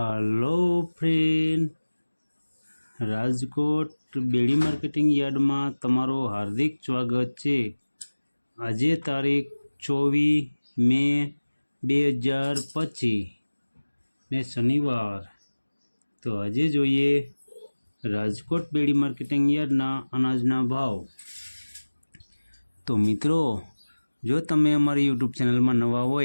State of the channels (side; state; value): both; inverted; correlation -1.00